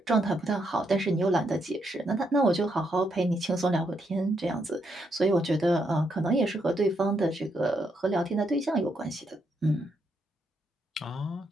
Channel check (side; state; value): both; normal; correlation 0.78